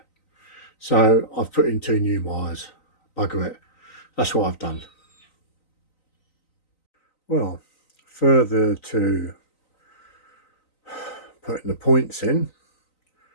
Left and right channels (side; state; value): right; late; 3.9 ms